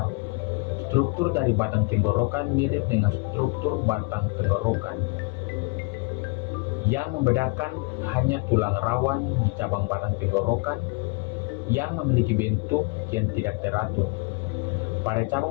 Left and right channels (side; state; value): right; quieter; 29.5 dB